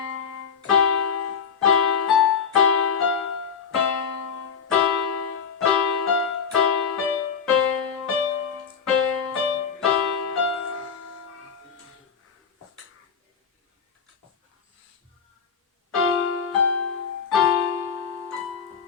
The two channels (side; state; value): right; quieter; 6.5 dB